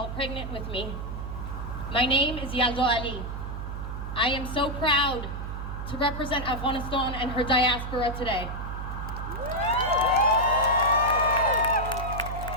pregnant with me. My name is Yalda Ali. I am so proud to represent Afghanistan and her diaspora today.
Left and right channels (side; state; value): right; noise; hum, 6 dB below the sound